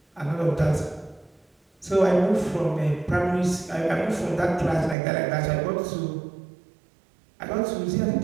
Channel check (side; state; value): left; drops out; at 5.0 s